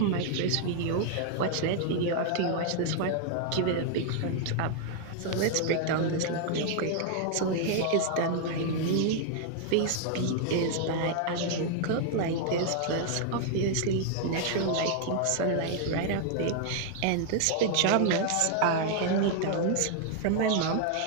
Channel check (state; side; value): different; both; correlation 0.00